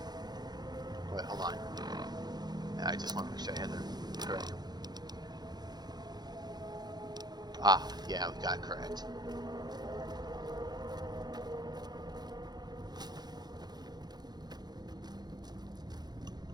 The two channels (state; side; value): late; left; 0.20 ms